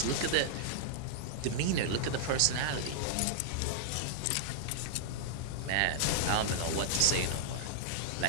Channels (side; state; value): both; different; correlation -0.01